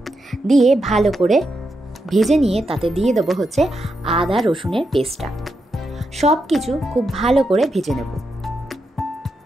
দিয়ে ভালো করে ভেজে নিয়ে তাতে দিয়ে দেবো হচ্ছে আদা রসুনের পেস্টটা। সব কিছু খুব ভালো করে ভেজে নেব।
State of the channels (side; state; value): both; normal; correlation 0.84